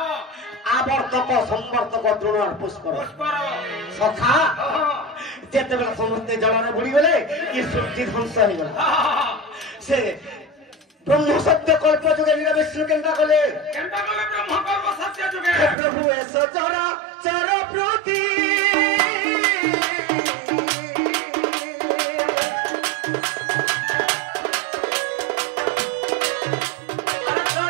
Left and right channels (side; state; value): left; drops out; at 15.8 s